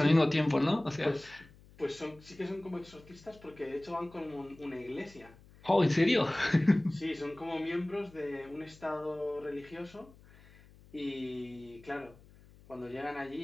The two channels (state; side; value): noise; left; hum, 24 dB below the sound